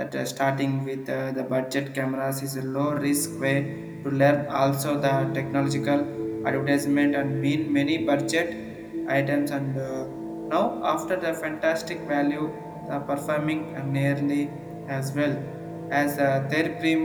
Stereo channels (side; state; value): both; identical; correlation 1.00